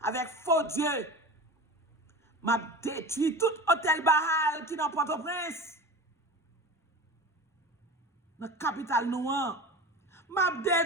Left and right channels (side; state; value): both; normal; correlation 0.32